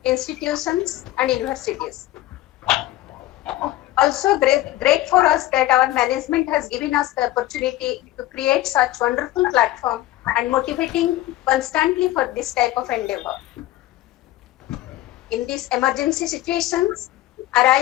institutions and universities. Also great for us that our management has given us the opportunity to create such wonderful platform and motivating constantly for this type of endeavor. In these emergency situations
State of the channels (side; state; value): right; quieter; 15.7 dB